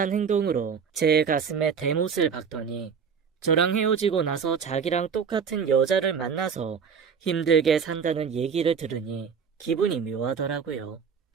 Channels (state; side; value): quieter; left; 6.4 dB